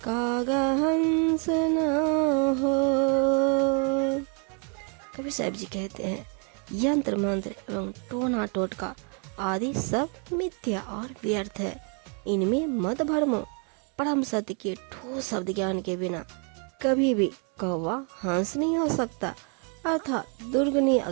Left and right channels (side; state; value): left; quieter; 38.6 dB